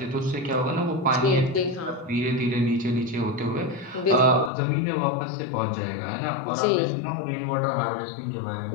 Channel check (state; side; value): drops out; right; at 4.5 s